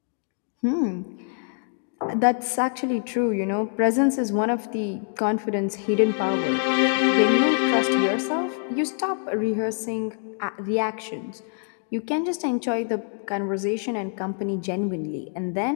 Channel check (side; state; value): right; silent; 62 dB below the other